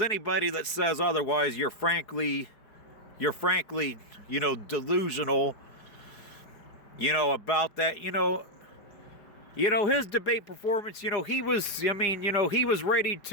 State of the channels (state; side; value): late; right; 4.7 ms